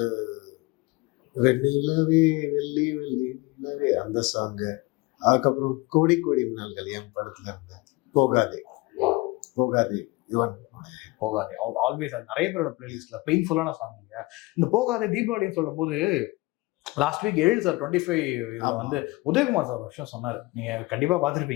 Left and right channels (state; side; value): quieter; right; 23.1 dB